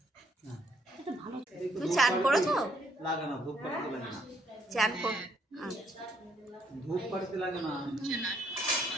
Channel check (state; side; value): normal; both; correlation 0.69